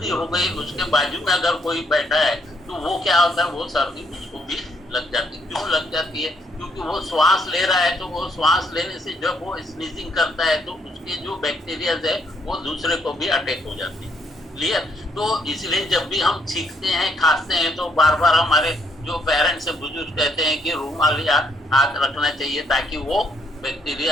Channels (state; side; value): normal; both; correlation 0.71